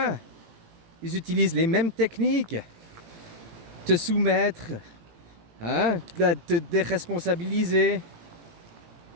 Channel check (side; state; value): left; late; 18 ms